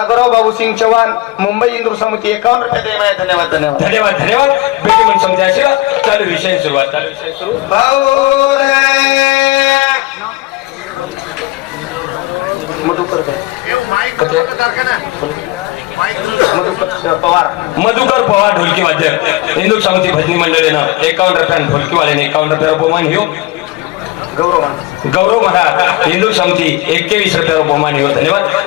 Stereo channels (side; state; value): right; quieter; 19.8 dB